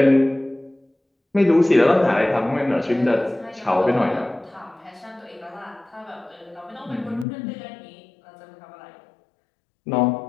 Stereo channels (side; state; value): right; drops out; at 7.2 s